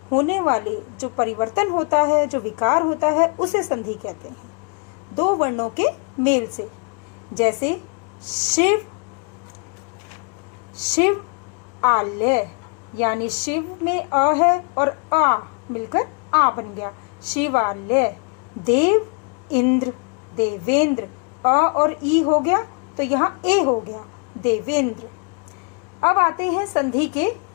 होने वाले जो परिवर्तन होता है, जो विकार होता है, उसे संधि कहते हैं। दो वर्णों के मेल से, जैसे शिव आल्य, यानी शिव में अ है और आ मिलकर आ बन गया, शिवाल्य। देव इंद्र, देवेंद्र, अ और ई हो गया तो यहाँ ए हो गया, देवेंद्र। अब आते हैं संधि के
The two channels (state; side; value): quieter; right; 37.0 dB